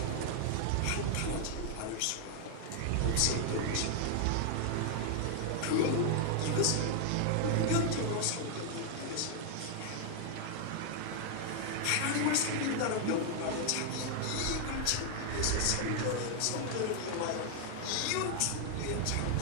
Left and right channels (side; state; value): both; different; correlation 0.00